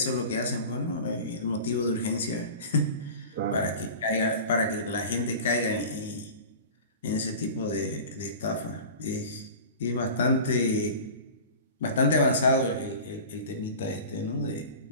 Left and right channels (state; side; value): inverted; both; correlation -0.36